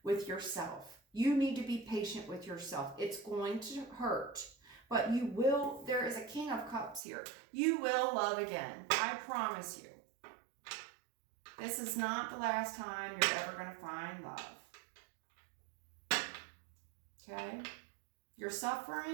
with yourself. You need to be patient with yourself. It's going to hurt, but you will. There is a King of Cups here. You will love again. I promise you. This is not the last time you're ever going to find love. Okay? You're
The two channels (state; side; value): drops out; left; at 7.0 s